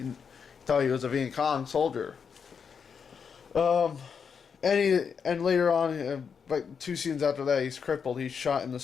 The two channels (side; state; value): right; quieter; 6.4 dB